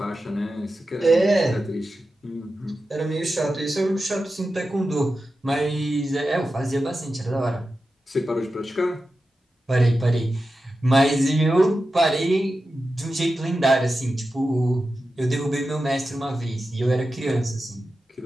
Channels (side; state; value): both; normal; correlation 0.92